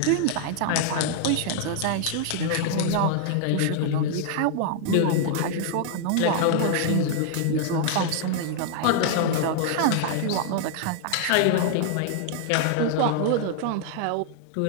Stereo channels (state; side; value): different; both; correlation -0.01